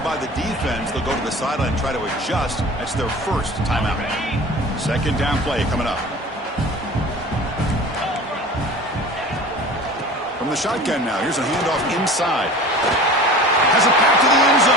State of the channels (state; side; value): normal; both; correlation 0.40